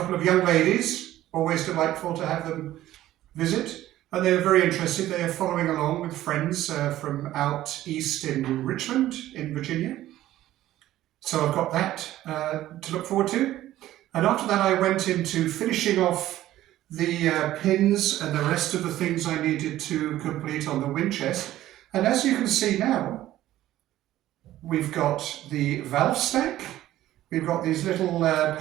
of young ladies, always delightful to have them visit, and they're very interested. They are following along with friends from out east in Richmond in Virginia. So I've got that to look forward to. And after that I went into finishing off the pins and the rest of the things I needed to complete on the Windchest. And as you can see now, we've got the valve stack, we've got these little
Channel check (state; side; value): quieter; left; 14.2 dB